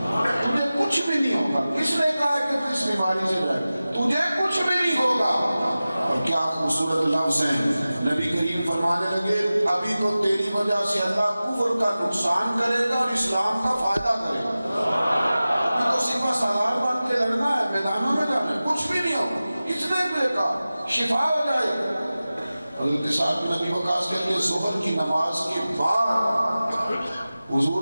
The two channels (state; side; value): inverted; both; correlation -0.96